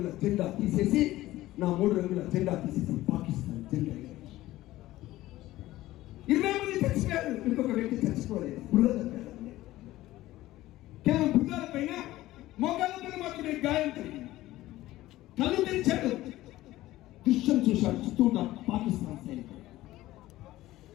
జెండా తీసేసి పాకిస్తాన్ జెండా 20 మంది చచ్చిపోయారు. ఇంకొక వ్యక్తి చచ్చిపోలేదు. కేవలం భుజాల పైన, మోకాళ్ళ పైన మాత్రమే గాయం కలిగింది. కళ్ళు తెరిచాడు, దృశ్యం చూశాడు. చుట్టూ ఉన్న పాకిస్తాన్ సైనికులు,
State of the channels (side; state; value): right; quieter; 16.3 dB